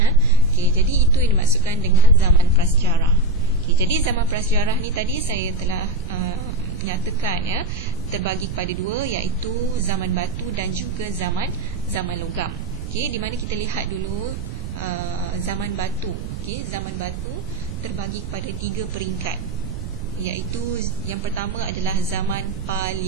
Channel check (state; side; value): noise; right; rumble, 8 dB below the sound